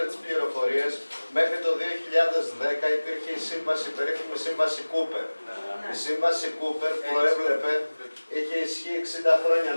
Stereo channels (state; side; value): inverted; both; correlation -1.00